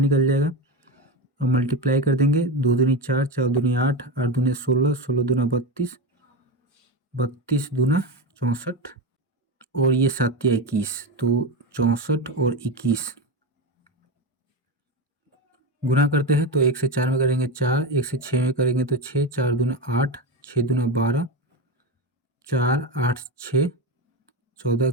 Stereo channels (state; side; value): normal; both; correlation 0.16